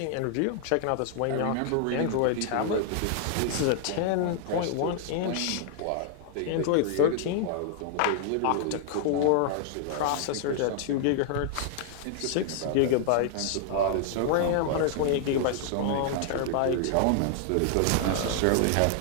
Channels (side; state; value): both; different; correlation 0.00